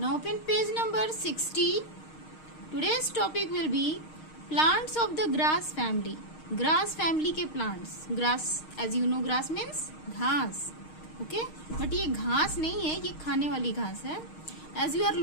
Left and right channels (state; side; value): late; right; 6.5 ms